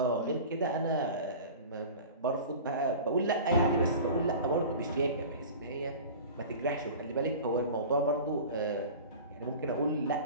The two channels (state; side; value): inverted; both; correlation -0.37